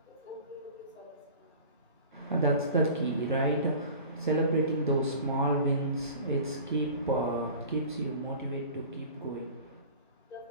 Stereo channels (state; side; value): inverted; both; correlation -0.40